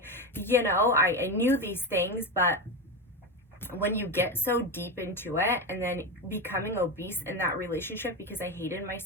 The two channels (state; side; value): normal; both; correlation 0.17